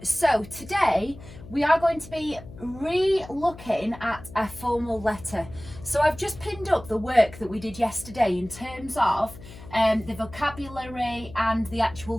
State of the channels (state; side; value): noise; left; hum, 17 dB below the sound